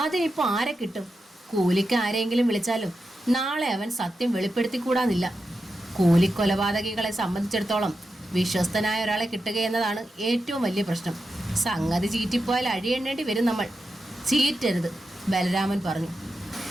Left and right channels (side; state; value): both; normal; correlation 0.89